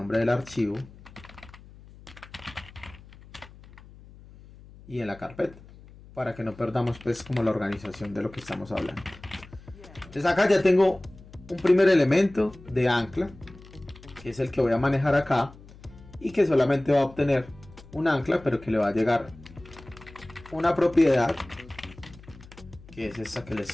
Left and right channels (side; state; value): left; noise; hum, 21 dB below the sound